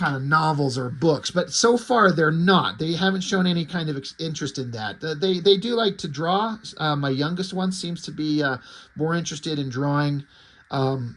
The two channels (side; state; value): both; identical; correlation 1.00